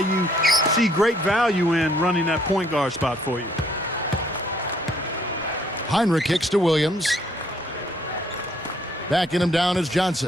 see great value in running that point guard spot for you. Heinrich kicks to Williams. Backing him down is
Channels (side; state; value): both; normal; correlation 0.65